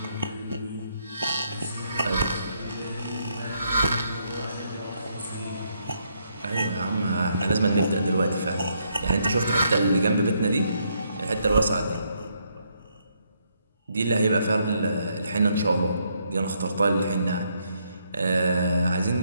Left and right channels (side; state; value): both; inverted; correlation -0.74